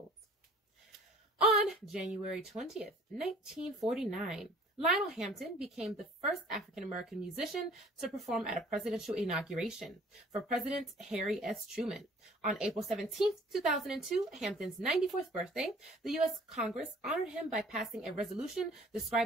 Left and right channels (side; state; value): both; normal; correlation 0.52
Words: On January 20th, 1949, Lionel Hampton became the first African-American musician to perform at a presidential inauguration for President Harry S. Truman. On April 17th, 2002, Hampton's 94th birthday, the U.S. Congress honored him by passing a resolution